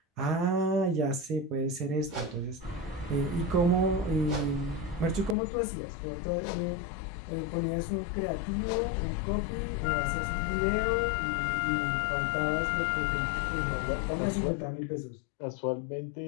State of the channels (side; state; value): right; drops out; at 5.4 s